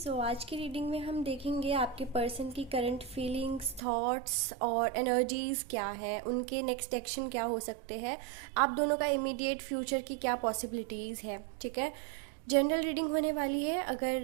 आज की reading में हम देखेंगे आपके पर्सन की करंट फीलिंग्स, थॉट्स और एनर्जीज क्या है, उनके नेक्स्ट एक्शन क्या हो सकते हैं, आप दोनों का इमीडिएट फ्यूचर की क्या पॉसिबिलिटीज़ है। ठीक है, जनरल रीडिंग होने वाली है।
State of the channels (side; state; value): left; drops out; at 3.8 s